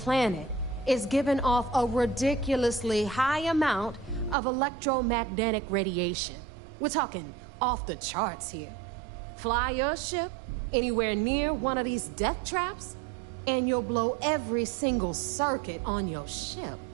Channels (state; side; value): drops out; left; at 4.4 s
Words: is giving off a ridiculously high amount of electromagnetic radiation. We're talking off the charts here. Fly your ship anywhere near one of these death traps, and you'll blow every single circuit on your ship.